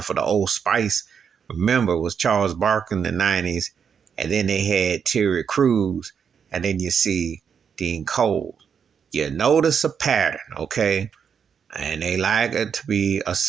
for the Old Spice. Remember, it was Charles Barkley in the 90s. And then they had Terry Crews. And then you see Dean Cole. You notice a pattern, okay? And they like it to be a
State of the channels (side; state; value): left; quieter; 7.1 dB